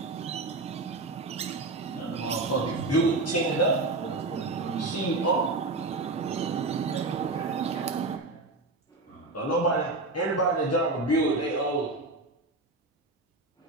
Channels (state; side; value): quieter; left; 3.1 dB